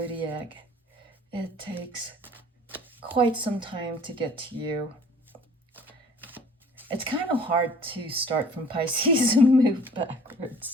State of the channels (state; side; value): normal; both; correlation 0.51